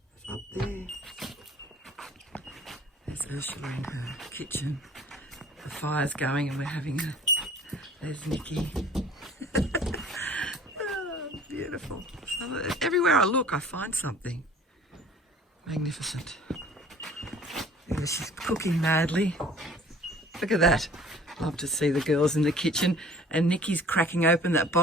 It's up there. There's Ursula in her kitchen. The fire's going and we're having there's Nikki. Oh, beautiful. So everywhere I look, I find something. Magnificent. There she's cooking madly. Look at that. Love to see the girls in the kitchen. And Nikki's cracking open that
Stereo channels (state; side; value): normal; both; correlation 0.50